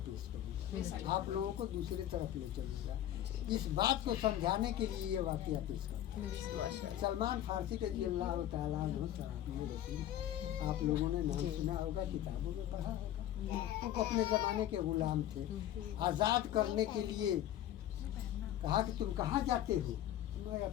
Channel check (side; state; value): right; quieter; 11.9 dB